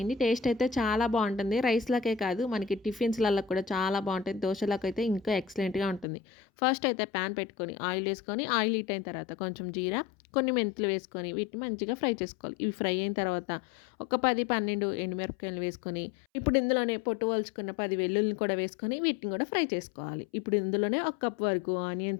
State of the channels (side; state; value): right; drops out; at 6.1 s